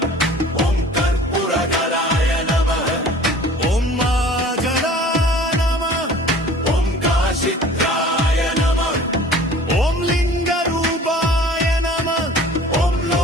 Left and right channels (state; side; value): normal; both; correlation 0.47